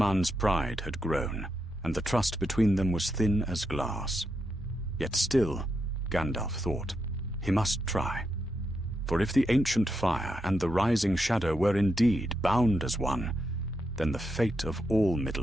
pride had grown, and the trust between them was thin as glass. Yet still, Gandalf thought, he must try. For if the ancient fire and the rising shadow were indeed bound as one, then the fate of all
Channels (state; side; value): normal; both; correlation 0.84